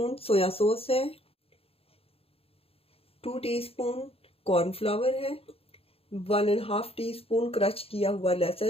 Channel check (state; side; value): late; right; 0.28 ms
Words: सोया सॉस है। 2 टीस्पून कॉर्नफ्लावर है। 1.5 टीस्पून क्रश किया हुआ